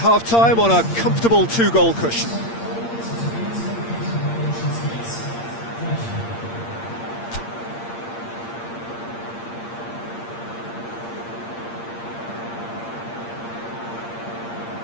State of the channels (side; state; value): right; late; 8.7 ms